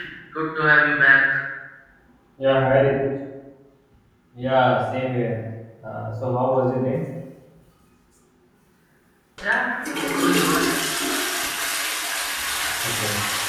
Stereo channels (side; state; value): both; identical; correlation 1.00